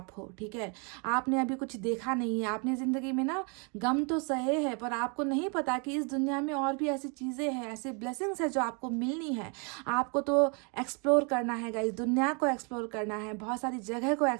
हो, ठीक है। आपने अभी कुछ देखा नहीं है, आपने ज़िंदगी में ना गम तो सहे है, पर आपको नहीं पता कि इस दुनिया में और भी ऐसी चीज़ें हैं, ऐसे ब्लेसिंग्स है जो आपको मिलनी है। आपको तो एक्सप्लोर करना है गाइस, दुनिया को एक्सप्लोर करना है, बहुत सारी जगह को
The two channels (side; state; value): left; quieter; 35.1 dB